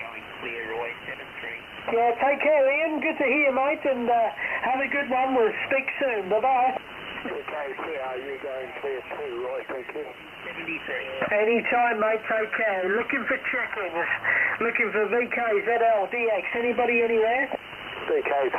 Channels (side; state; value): both; identical; correlation 1.00